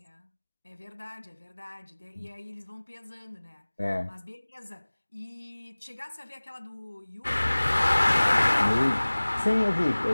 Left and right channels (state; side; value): inverted; both; correlation -1.00